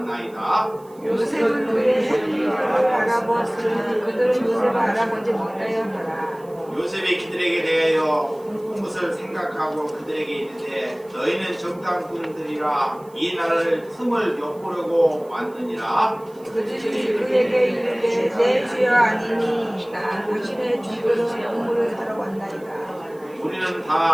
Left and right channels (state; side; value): noise; right; hiss, 28 dB below the sound